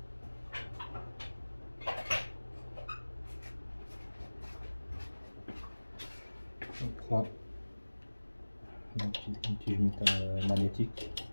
On prend un petit magnétique.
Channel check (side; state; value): both; inverted; correlation -1.00